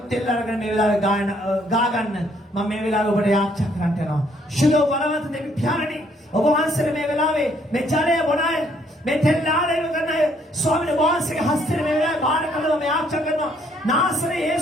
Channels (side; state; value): both; normal; correlation 0.67